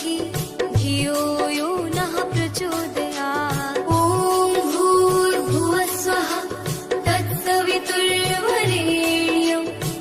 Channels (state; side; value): identical; both; correlation 1.00